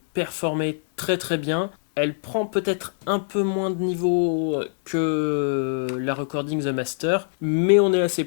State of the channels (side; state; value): right; silent; digital silence